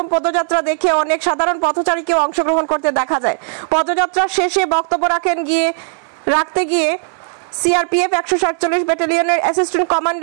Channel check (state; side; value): silent; left; 62 dB below the other